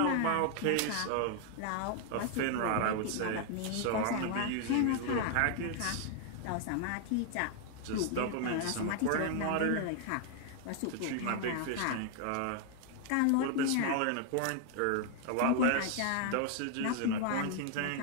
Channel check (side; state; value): both; different; correlation 0.00